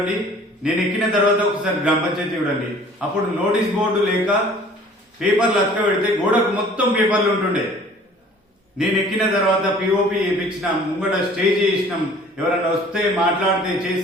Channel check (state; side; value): normal; both; correlation 0.51